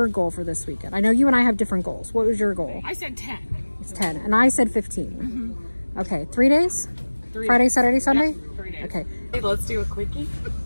goal for this weekend? I know you and I have different goals. What was your goal? I said 10. It's 10, and I said 15. Mm-hmm. Okay, 3 days? 3 Friday, days. Saturday, Sunday? Yep, 3 days. Okay. Hey, let's do a quickie.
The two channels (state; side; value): inverted; both; correlation -1.00